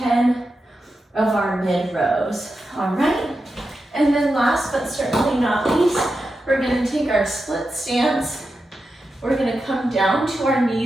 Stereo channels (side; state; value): both; normal; correlation 0.89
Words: of our mid rows, all right? And then last but certainly not least, we're gonna take our split stance. We're gonna come down to our